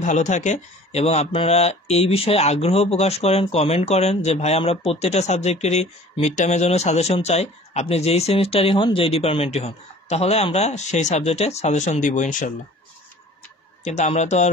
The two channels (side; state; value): both; normal; correlation 0.47